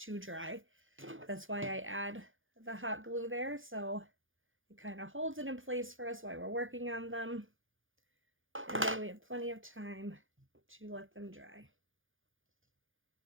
dry. That's why I add the hot glue there, so it kind of holds it in place for us while we're working on them. And then we have plenty of time to let them dry.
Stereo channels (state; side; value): late; left; 0.58 ms